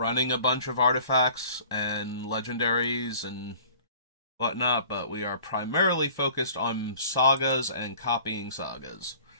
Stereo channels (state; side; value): inverted; both; correlation -0.48